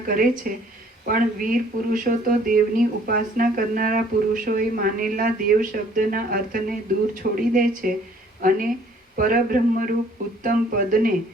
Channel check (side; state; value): both; normal; correlation 0.58